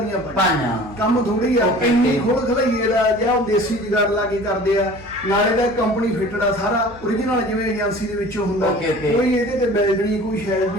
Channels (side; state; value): left; noise; hum, 21 dB below the sound